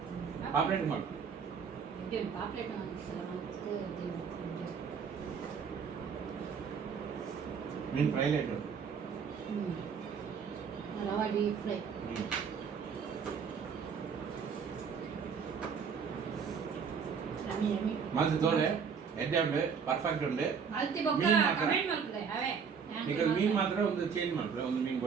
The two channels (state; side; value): quieter; left; 6.4 dB